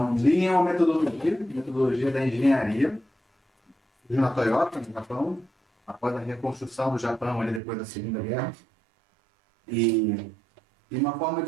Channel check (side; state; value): left; drops out; at 7.6 s